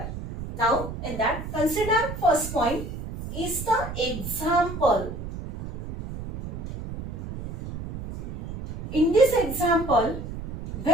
Now, in that, consider first point is the example. In this example,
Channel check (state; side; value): noise; right; rumble, 8 dB below the sound